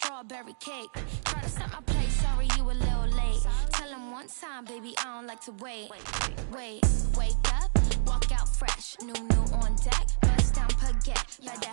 cake. Try to stop my play, sorry you a little late. Tell him one time, baby, I don't like to wait. Wake up, walk out fresh, new on deck. Bust down baguette,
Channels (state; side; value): silent; left; digital silence